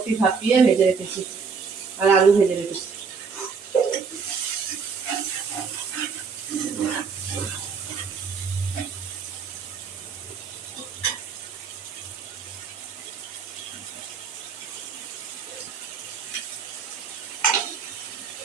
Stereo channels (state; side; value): quieter; left; 5.6 dB